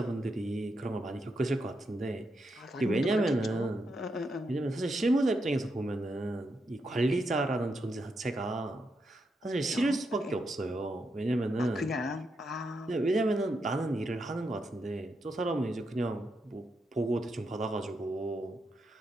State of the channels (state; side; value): normal; both; correlation 0.82